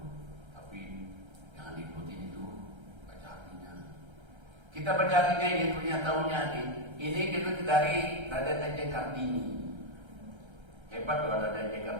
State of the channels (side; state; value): left; late; 1.3 ms